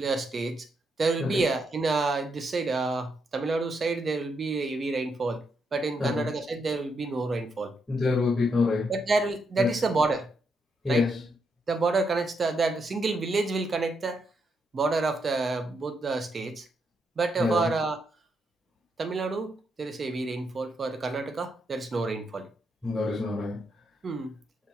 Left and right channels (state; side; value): normal; both; correlation 0.80